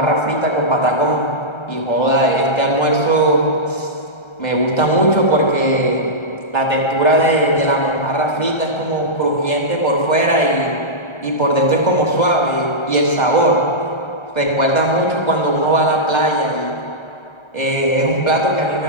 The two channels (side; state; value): right; late; 1.3 ms